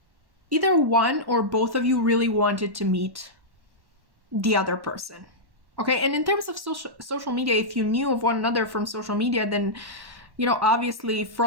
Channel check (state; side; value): late; left; 1.1 ms